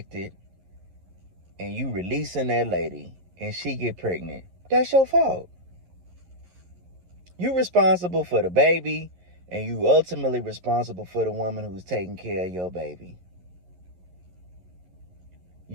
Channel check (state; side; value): late; left; 11 ms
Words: and you releasing that lady and she get pregnant, that's your fault. You responsible for the baby and you ultimately responsible for the woman who's taking care of your baby.